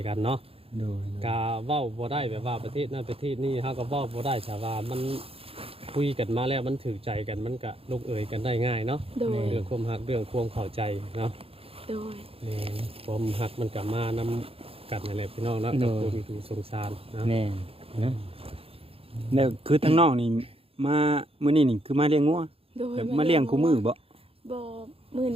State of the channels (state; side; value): late; left; 0.28 ms